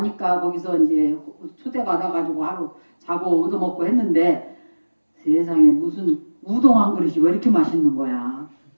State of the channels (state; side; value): inverted; both; correlation -1.00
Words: 거기서 이제 초대받아가지고 하루 자고 얻어먹고 했는데 세상에 무슨 우동 한 그릇이 왜 이렇게 맛있는 거야.